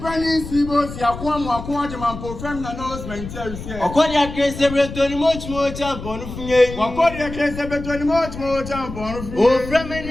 Seabos, Yaquam, preferring announcement here. According to case, every much more tampon. According to case, every much more tampon. Oh, from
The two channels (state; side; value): noise; left; rumble, 10 dB below the sound